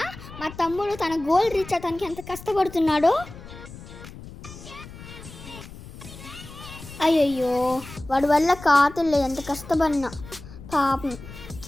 మా తమ్ముడు తన గోల్ రీచ్ అవడానికి ఎంత కష్టపడుతున్నాడో. అయ్యయ్యో, వాడి వల్ల కాతులే ఎంత కష్టపడినా పాపం.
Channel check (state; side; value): noise; left; rumble, 15 dB below the sound